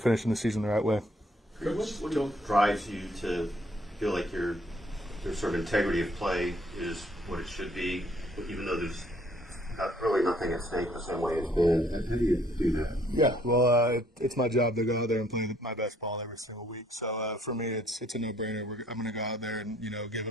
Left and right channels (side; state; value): both; normal; correlation 0.64